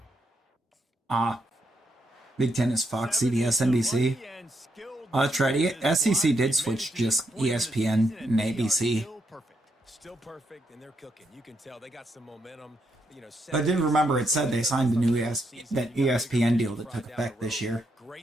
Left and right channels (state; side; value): normal; both; correlation 0.79